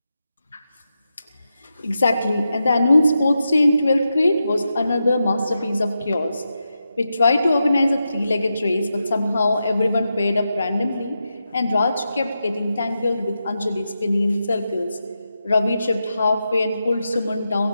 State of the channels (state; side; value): inverted; both; correlation -0.88